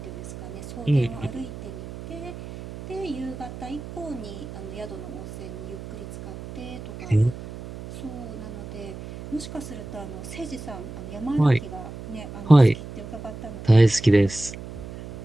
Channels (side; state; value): right; noise; hum, 11 dB below the sound